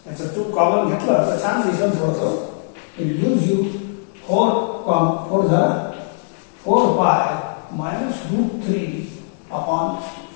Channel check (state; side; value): silent; right; digital silence